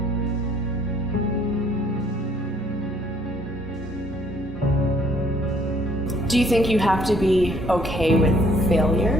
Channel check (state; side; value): normal; both; correlation 0.63